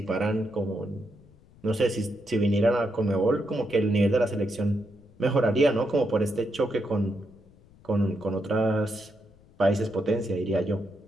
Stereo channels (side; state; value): left; noise; rumble, 27 dB below the sound